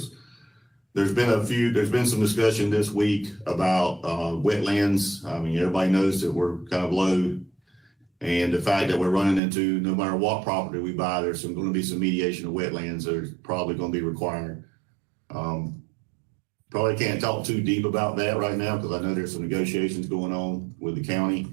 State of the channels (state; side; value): drops out; left; at 9.4 s